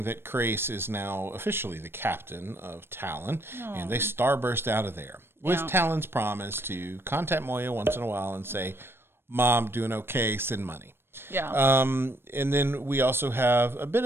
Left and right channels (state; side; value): late; left; 0.11 ms